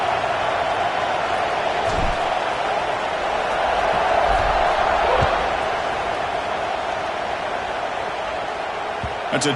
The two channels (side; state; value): both; identical; correlation 1.00